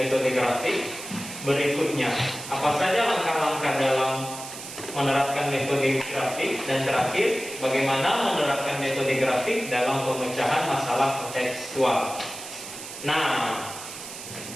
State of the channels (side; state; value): right; noise; hiss, 11 dB below the sound